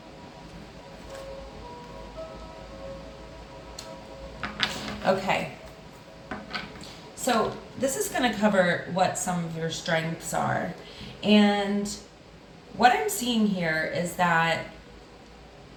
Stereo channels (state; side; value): identical; both; correlation 1.00